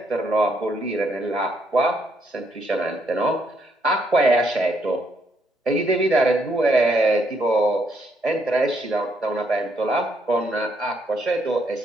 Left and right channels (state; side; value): normal; both; correlation 0.73